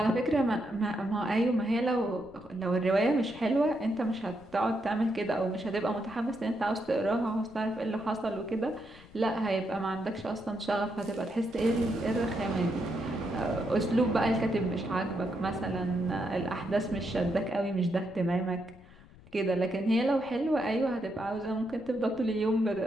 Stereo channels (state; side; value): noise; left; rumble, 23 dB below the sound